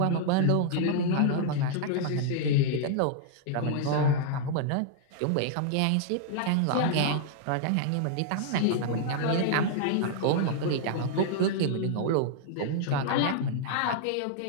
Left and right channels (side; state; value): both; different; correlation -0.01